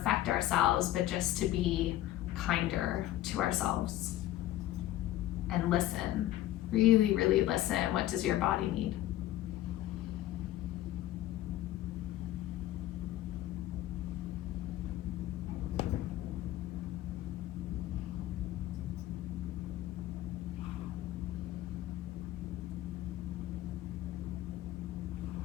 ourselves, but just to be kinder to ourselves and listen. Really, really listen. What does your body need?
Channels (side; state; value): right; quieter; 14.3 dB